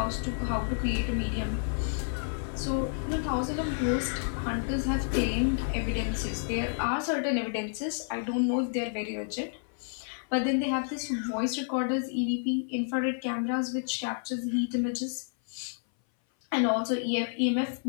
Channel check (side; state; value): right; silent; 58 dB below the other